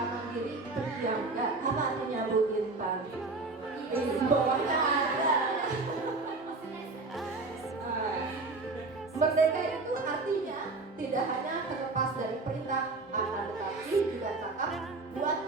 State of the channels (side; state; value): left; quieter; 3.6 dB